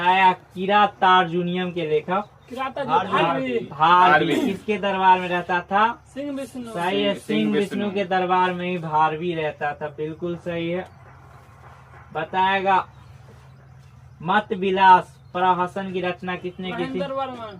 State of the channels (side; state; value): both; identical; correlation 1.00